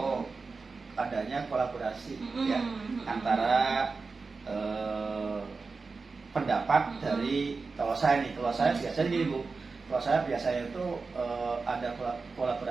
adanya kolaborasi ya antara pendapat dari kalau saya biasanya gini Bu. Kalau saya biasanya itu ada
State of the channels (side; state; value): left; quieter; 4.3 dB